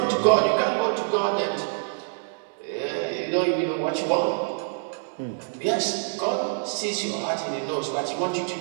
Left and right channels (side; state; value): left; silent; digital silence